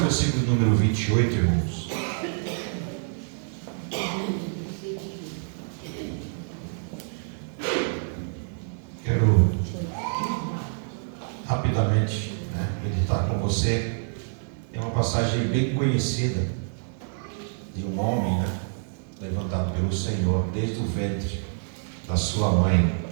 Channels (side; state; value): left; silent; digital silence